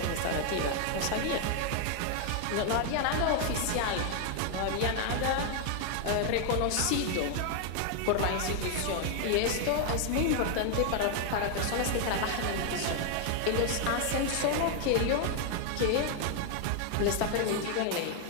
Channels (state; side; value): different; both; correlation 0.00